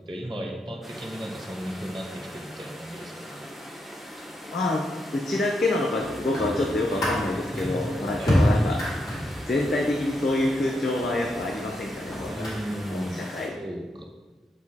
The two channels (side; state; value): both; normal; correlation 0.82